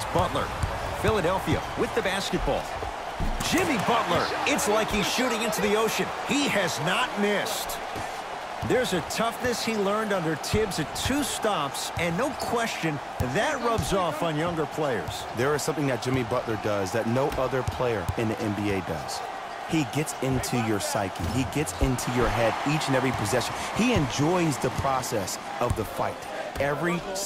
Butler. Philadelphia with the basketball. Jimmy Butler, it's like he's shooting into the ocean. He has not missed. There's a toughness he learned under Tibbs at 2 stops, and no question, that rubs off on younger players. There is something that Jimmy Butler does that no other player in the NBA does. He gets into your psyche. He gets into your head each and every possession. He enjoys the process of the fight. Every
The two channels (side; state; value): both; identical; correlation 1.00